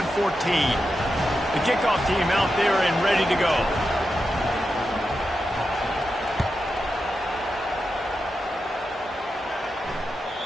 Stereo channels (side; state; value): both; normal; correlation 0.88